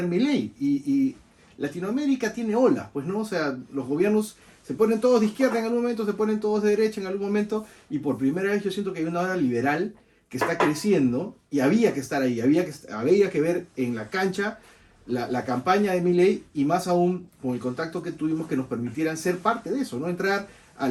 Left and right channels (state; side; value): identical; both; correlation 1.00